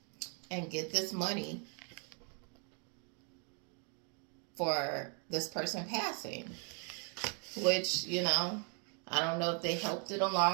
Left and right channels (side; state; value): left; quieter; 38.8 dB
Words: And get this money for this person passing. Which, you know, I don't know if they helped it